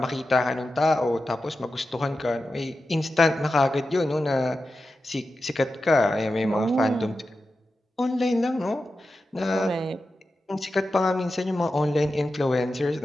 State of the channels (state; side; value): normal; both; correlation 0.91